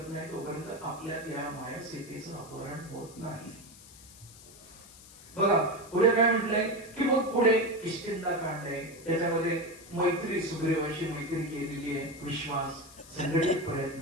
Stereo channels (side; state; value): left; noise; hiss, 20 dB below the sound